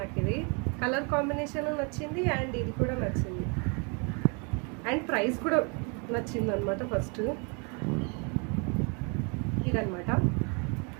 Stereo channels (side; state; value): left; quieter; 34.6 dB